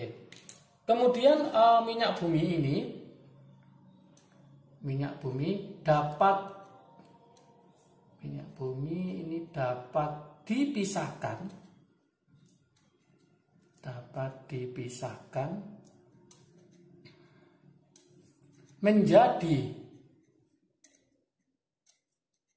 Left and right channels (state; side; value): identical; both; correlation 1.00